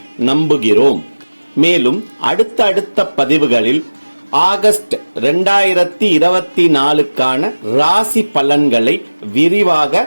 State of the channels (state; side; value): inverted; both; correlation -1.00